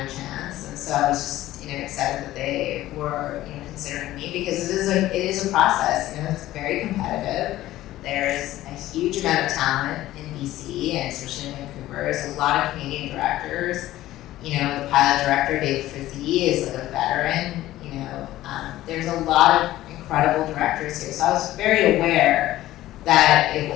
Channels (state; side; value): quieter; right; 15.2 dB